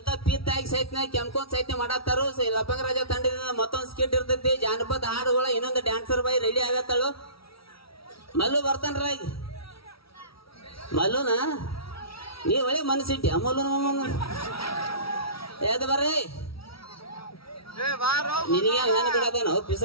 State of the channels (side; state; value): right; late; 0.75 ms